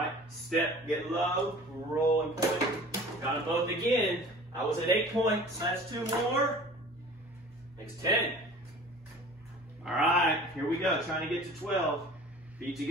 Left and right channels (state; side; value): normal; both; correlation 0.44